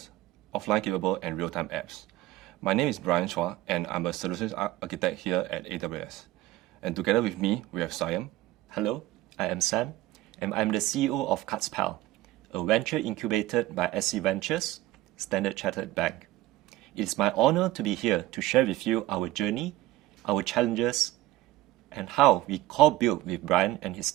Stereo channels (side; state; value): left; quieter; 16.6 dB